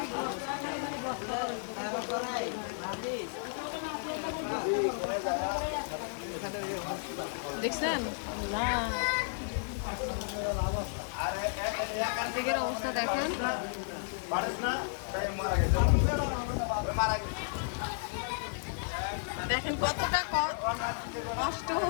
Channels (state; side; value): silent; right; 56 dB below the other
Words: দেখছেন দিকের অবস্থা দেখেন। দেখেন কতটা কষ্ট